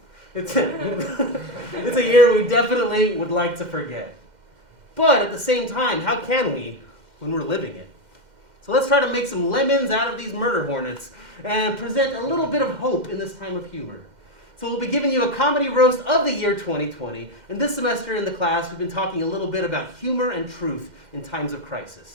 It's a year we definitely would like to forget. But at the same time, how can we when we're living it? So let's try to make some lemons out of these murder hornets and present a little bit of hope in this time of humor. So we'll be giving you a comedy roast of the year 2020. And this semester in the class, we've been talking a little bit about humor and truth in times of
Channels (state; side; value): late; left; 2.1 ms